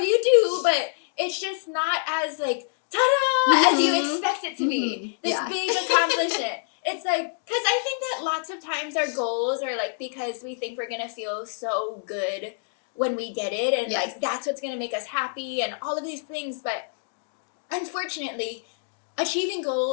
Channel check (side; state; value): right; silent; digital silence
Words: do, but it's just not as like ta-da as you expect it to be. This big accomplishment. It's like, because I think that lots of times our goals are like, because we think we're gonna feel so good when we get it, and like that's what's gonna make us happy and all of these things. But unfortunately, achieving